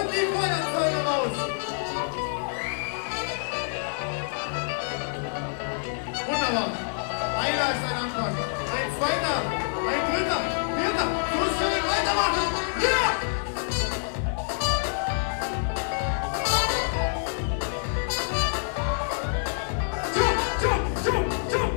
die Feuerzeuge raus. Wunderbar. Einer ist ein Anfang. Ein zweiter, ein dritter, vierter. So schnell weitermachen. Ja!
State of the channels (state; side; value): silent; right; 60 dB below the other